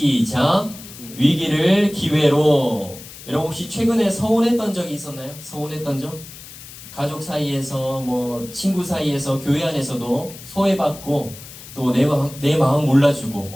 위기를 기회로. 여러분 혹시 최근에 서운했던 적이 있었나요? 서운했던 적? 가족 사이에서 뭐 친구 사이에서 교회 안에서도 소외받고 또 내 마음 몰라주고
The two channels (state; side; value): noise; left; hiss, 16 dB below the sound